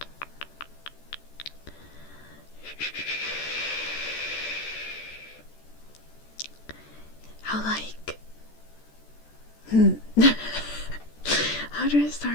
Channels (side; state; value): right; late; 14 ms